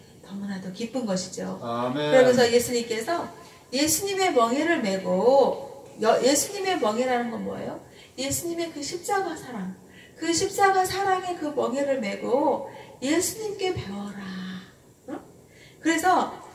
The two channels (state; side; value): identical; both; correlation 1.00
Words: 너무나도 기쁜 것이죠. 아멘. 그러면서 예수님께서 예수님의 멍에를 메고 예수님의 멍에라는 건 뭐예요? 예수님의 그 십자가 사랑 그 십자가 사랑의 그 멍에를 메고 예수님께 배워라. 응? 그래서